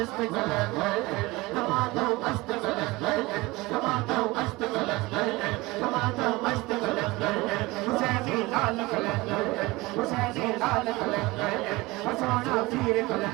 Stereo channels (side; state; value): left; quieter; 21.6 dB